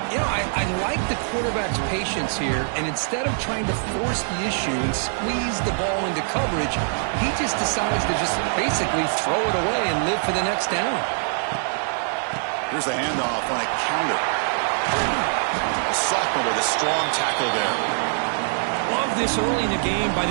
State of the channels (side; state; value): left; silent; digital silence